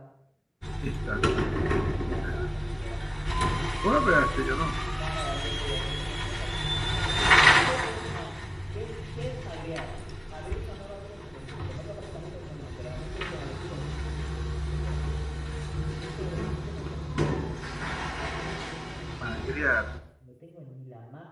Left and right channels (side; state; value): both; identical; correlation 1.00